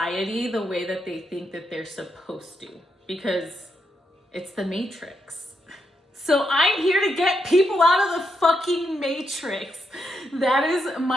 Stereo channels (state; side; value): normal; both; correlation 0.81